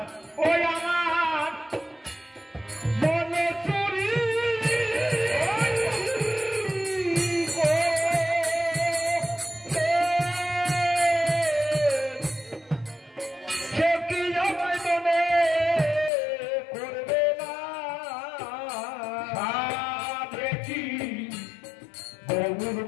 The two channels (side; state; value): right; drops out; at 16.1 s